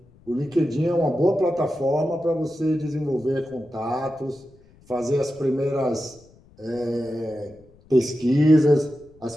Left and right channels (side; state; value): left; noise; rumble, 28 dB below the sound